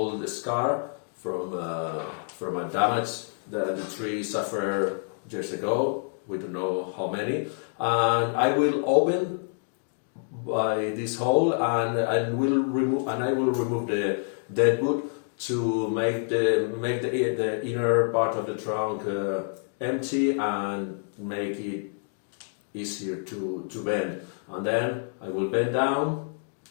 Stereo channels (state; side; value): silent; right; digital silence